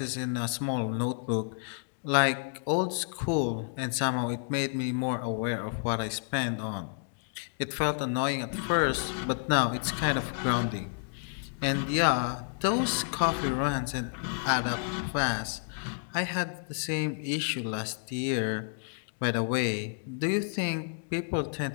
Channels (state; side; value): silent; right; digital silence